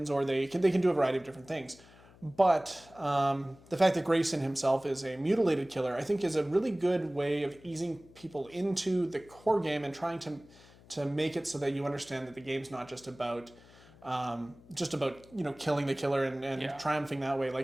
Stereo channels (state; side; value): noise; left; hum, 24 dB below the sound